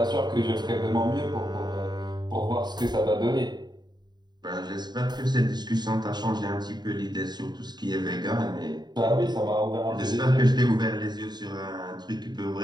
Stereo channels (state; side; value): late; left; 0.20 ms